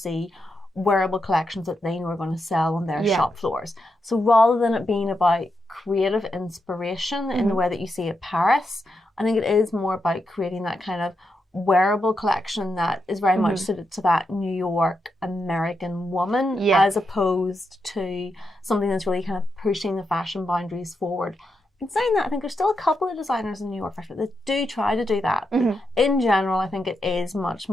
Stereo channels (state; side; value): normal; both; correlation 0.85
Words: wearable collections that they know are going to sell on their shop floors. So rather than it being about creative inspiration in the way that you see at Paris, I think it is more about creating that kind of wearable collection that is very much suited to that New York American woman, as opposed to something that's really kind of pushing the fashion boundaries forward. In saying that, I think there's still a couple of designers in New York Fashion that do try to do that. In general, I think it is much